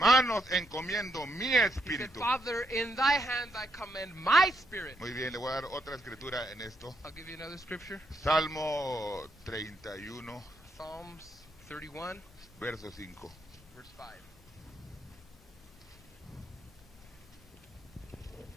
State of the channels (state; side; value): normal; both; correlation 0.79